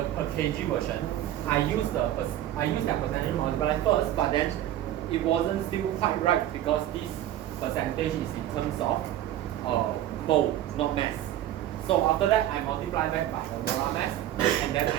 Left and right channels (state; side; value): quieter; left; 12.6 dB